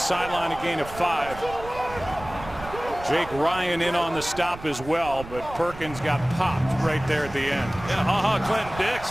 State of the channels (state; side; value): noise; right; rumble, 14 dB below the sound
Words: a gain of 5. Jake Ryan in on the stop as well, but Perkins got popped right there at the end. Yeah, Clinton